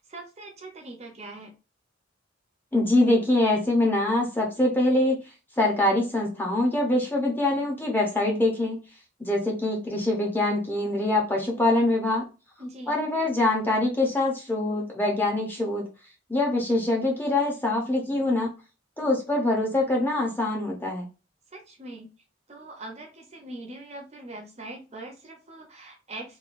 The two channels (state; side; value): normal; both; correlation 0.59